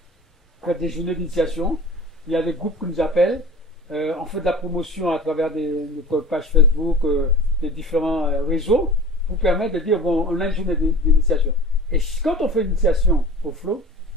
On fait des journées d'initiation. Il y a des groupes qui nous appellent. On fait de la promotion à travers notre page Facebook, des différents réseaux, pour permettre de dire, bon, on a une journée d'initiation. Et quand on fait une initiation au flot,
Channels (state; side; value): normal; both; correlation 0.39